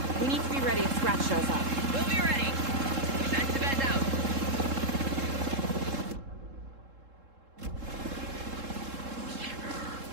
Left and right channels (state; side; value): late; left; 3.7 ms